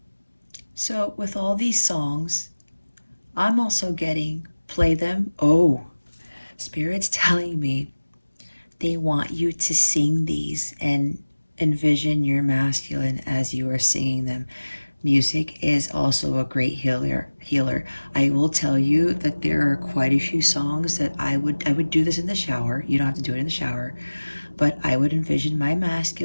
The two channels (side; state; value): both; inverted; correlation -1.00